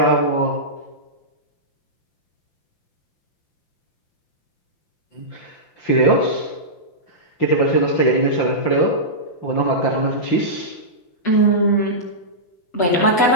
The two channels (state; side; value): late; right; 5.7 ms